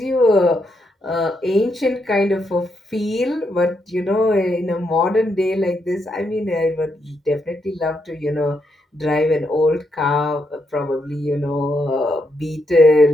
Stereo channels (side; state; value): both; normal; correlation 0.80